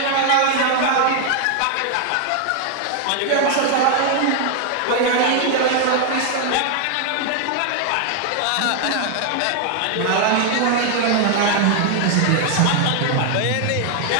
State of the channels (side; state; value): both; different; correlation 0.00